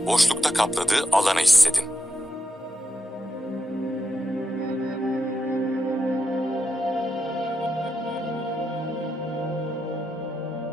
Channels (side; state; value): both; normal; correlation 0.84